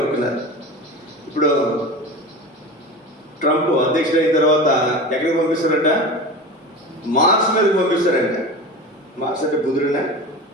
ఇప్పుడు ట్రంప్ అధ్యక్షుడు అయిన తర్వాత ఎక్కడికి పంపిస్తారంట? మార్స్ మీదకి పంపిస్తారంట. మార్స్ అంటే బుధుడినా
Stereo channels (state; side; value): normal; both; correlation 0.30